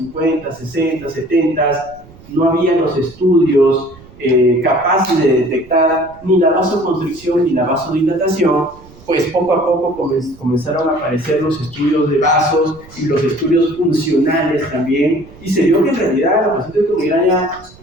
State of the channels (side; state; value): right; noise; rumble, 23 dB below the sound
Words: 60, 70 no había los estudios capaces de detectar ni la vasoconstricción ni la vasodilatación, pues poco a poco comenzaron a aparecer los estudios de vasos y los estudios funcionales también, y se vio que en realidad los pacientes con migraña